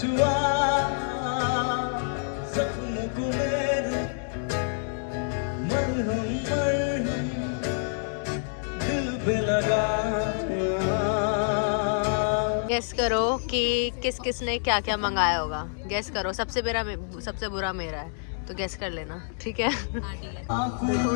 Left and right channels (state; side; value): silent; right; digital silence